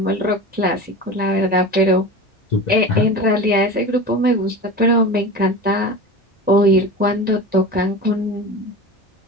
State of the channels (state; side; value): normal; both; correlation 0.31